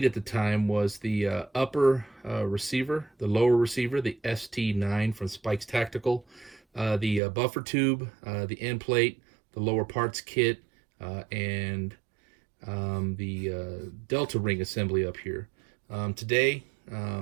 at the time was the upper receiver, the lower receiver, the ST9 from Spike's Tactical, the buffer tube, the end plate, the lower parts kit, and the Delta ring assembly up here. Today,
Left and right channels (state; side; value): drops out; left; at 7.2 s